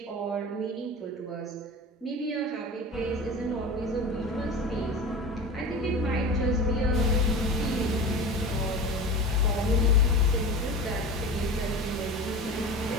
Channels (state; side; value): normal; both; correlation 0.32